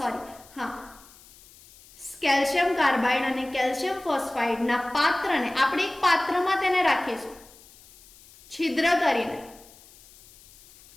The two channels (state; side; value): noise; left; hiss, 24 dB below the sound